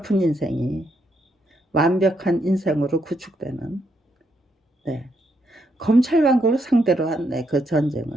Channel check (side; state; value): both; normal; correlation 0.77